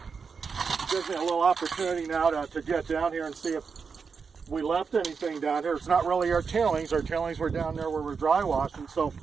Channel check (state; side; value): quieter; left; 5.5 dB